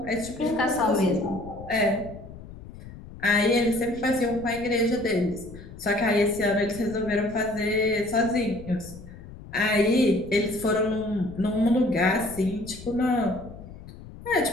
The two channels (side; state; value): left; noise; rumble, 16 dB below the sound